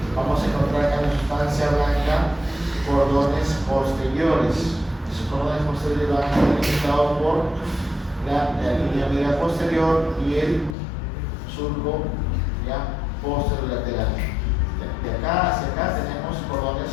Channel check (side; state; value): right; drops out; at 10.8 s